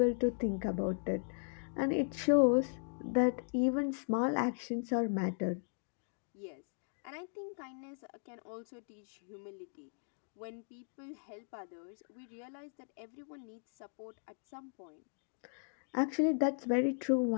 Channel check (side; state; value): right; silent; digital silence